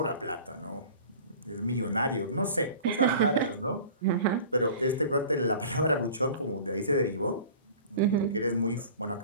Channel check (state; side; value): inverted; both; correlation -0.43